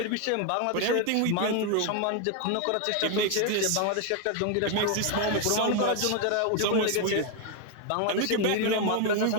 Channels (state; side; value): different; both; correlation 0.01